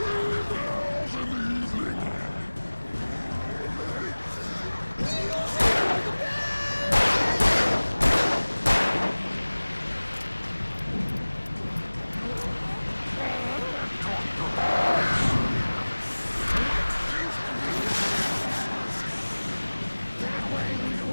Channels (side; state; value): both; inverted; correlation -1.00